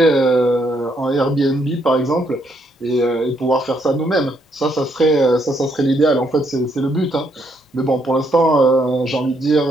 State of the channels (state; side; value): normal; both; correlation 0.73